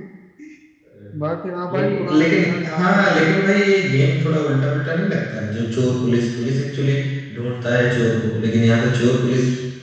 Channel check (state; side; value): identical; both; correlation 1.00